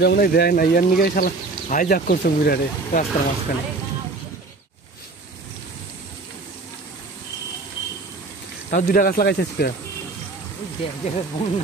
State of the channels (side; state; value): left; quieter; 3.5 dB